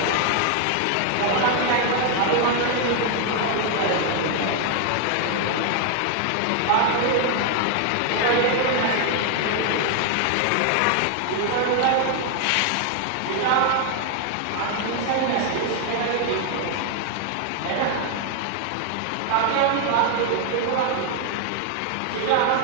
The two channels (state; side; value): different; both; correlation 0.00